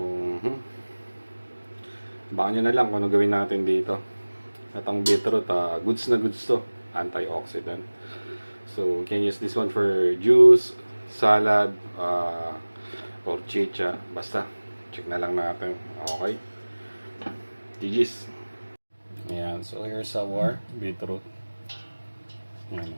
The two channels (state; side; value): inverted; both; correlation -1.00